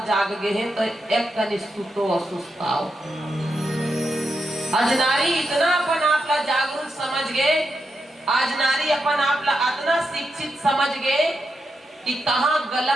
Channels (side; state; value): both; normal; correlation 0.85